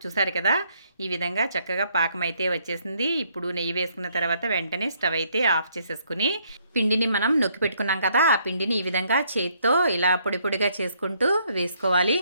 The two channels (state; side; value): inverted; both; correlation -0.69